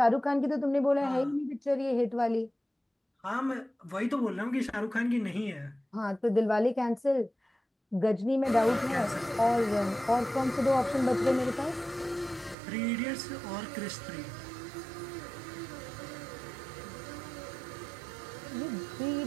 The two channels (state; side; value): drops out; left; at 12.6 s